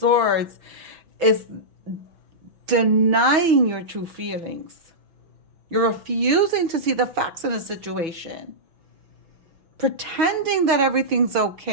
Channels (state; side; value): late; left; 5.9 ms